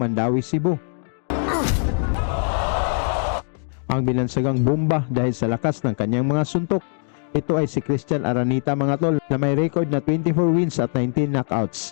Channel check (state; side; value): silent; right; digital silence